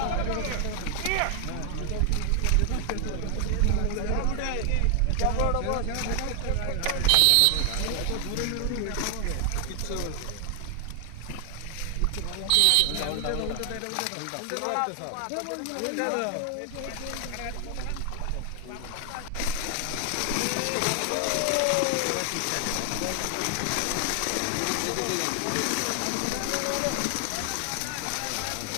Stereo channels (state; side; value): different; both; correlation 0.00